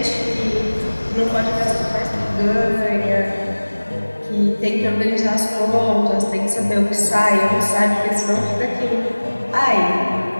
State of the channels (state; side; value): inverted; both; correlation -1.00